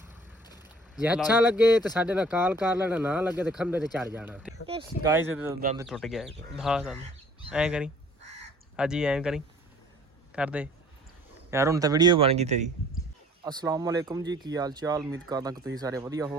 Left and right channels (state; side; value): normal; both; correlation 0.54